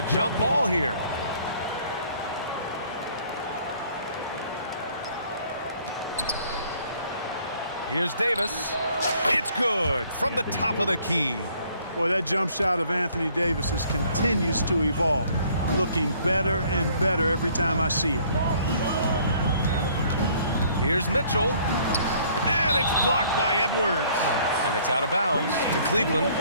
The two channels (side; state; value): both; inverted; correlation -0.60